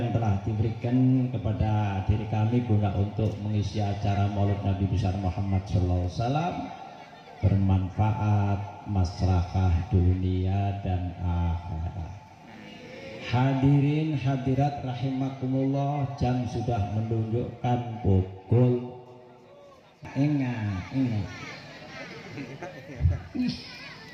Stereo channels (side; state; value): both; identical; correlation 1.00